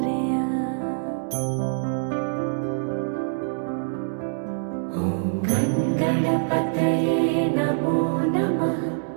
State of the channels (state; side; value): silent; left; 62 dB below the other